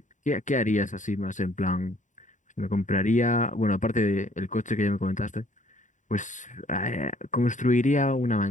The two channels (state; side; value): late; right; 0.36 ms